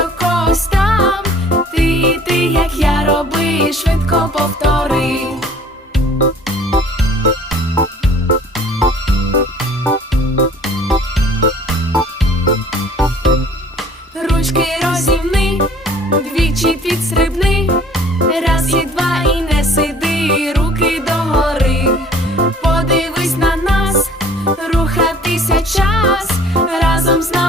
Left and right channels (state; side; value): normal; both; correlation 0.53